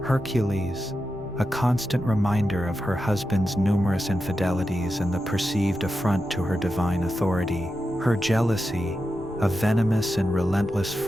Hercules, a constant reminder of her husband's numerous infidelities and the perceived affront to her divine authority. Her jealousy, a venomous and relentless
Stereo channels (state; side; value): noise; left; rumble, 18 dB below the sound